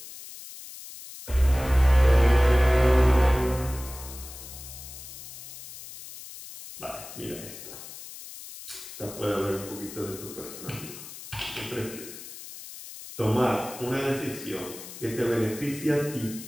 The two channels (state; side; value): noise; left; hiss, 14 dB below the sound